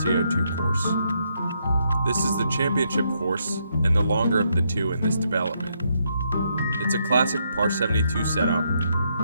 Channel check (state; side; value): inverted; both; correlation -0.77